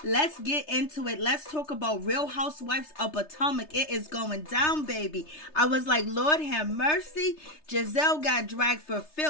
Let's get into it. Let's talk about Real Housewives of Potomac. It is going down, baby. I was like, Lord have mercy. Gizelle got dragged for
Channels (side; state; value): right; late; 3.3 ms